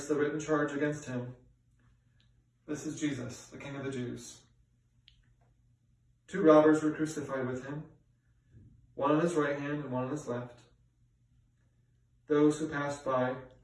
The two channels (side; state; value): both; identical; correlation 1.00